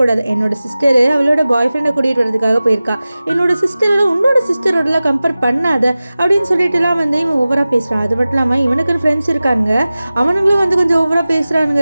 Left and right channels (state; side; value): inverted; both; correlation -0.96